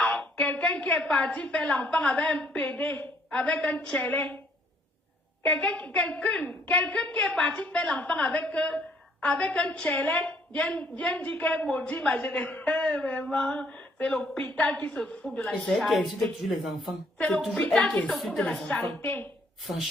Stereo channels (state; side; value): normal; both; correlation 0.65